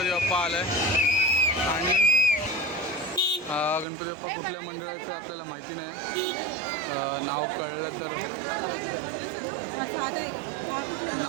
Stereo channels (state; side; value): drops out; left; at 3.9 s